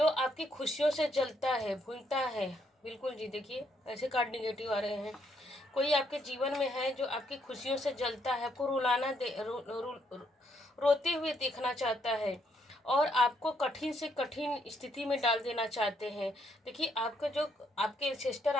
आपकी खुशियों से जलता है, भूलता है। बिल्कुल जी, देखिए ऐसे कार्ड निगेटिव आ रहे हैं। कोई आपके जीवन में है जो आपकी खुशियों से जलता है, आपको रुलाना दे रोते हुए देखना चाहता है और आपको कठिन से कठिन स्थिति में डाल देना चाहते हैं। देखिए आपके सिस्टर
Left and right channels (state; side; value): normal; both; correlation 0.73